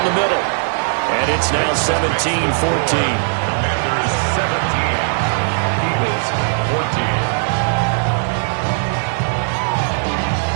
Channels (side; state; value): left; silent; digital silence